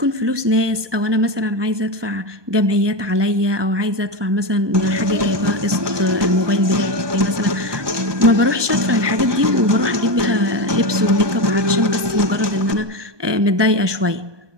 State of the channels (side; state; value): left; late; 1.2 ms